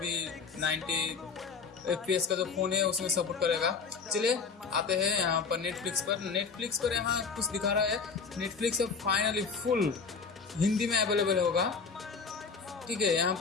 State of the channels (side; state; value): right; quieter; 5.1 dB